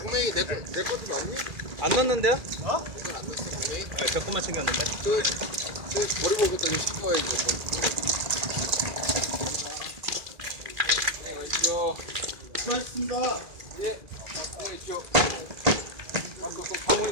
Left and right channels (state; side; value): late; left; 2.4 ms